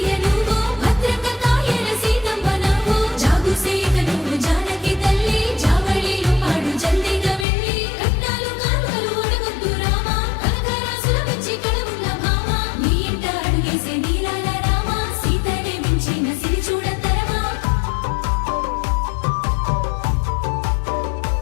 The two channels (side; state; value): right; drops out; at 7.5 s